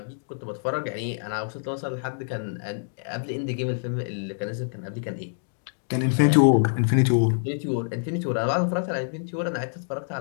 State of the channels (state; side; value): silent; right; digital silence